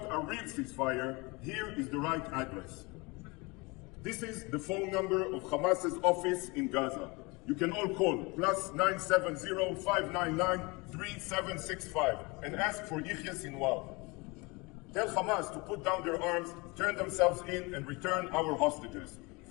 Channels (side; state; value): right; quieter; 26.6 dB